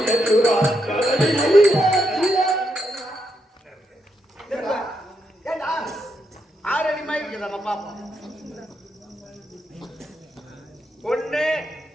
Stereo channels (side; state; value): both; normal; correlation 0.81